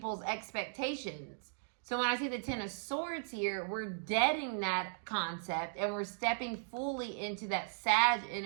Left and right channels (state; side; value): silent; left; digital silence